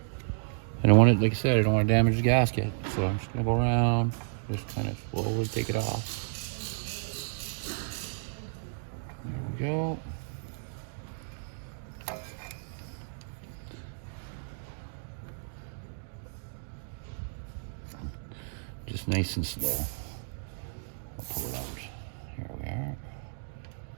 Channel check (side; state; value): left; silent; digital silence